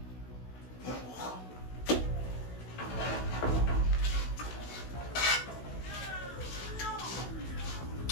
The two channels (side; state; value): right; late; 16 ms